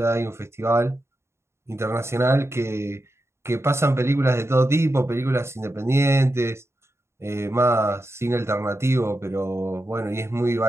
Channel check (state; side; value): late; left; 0.13 ms